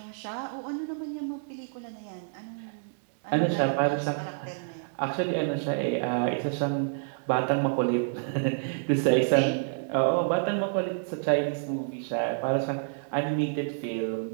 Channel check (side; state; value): left; silent; digital silence